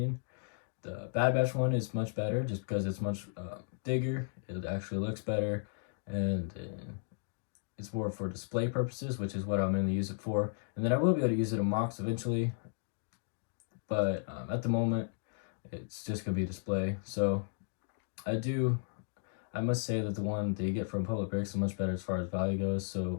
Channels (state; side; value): silent; right; digital silence